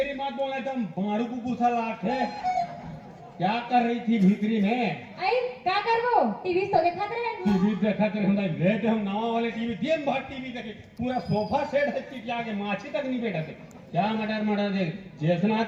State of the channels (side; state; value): both; identical; correlation 1.00